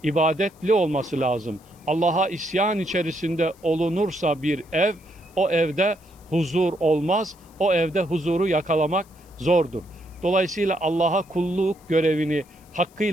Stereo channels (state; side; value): noise; left; hiss, 29 dB below the sound